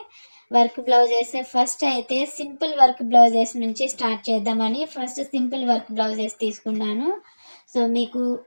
వర్క్ బ్లౌజెస్ ఫస్ట్ అయితే సింపుల్ వర్క్ బ్లౌజెస్ నుంచి స్టార్ట్ చేద్దామని ఫస్ట్ సింపుల్ వర్క్ బ్లౌజెస్ తీసుకున్నాను. సో మీకు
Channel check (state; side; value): inverted; both; correlation -1.00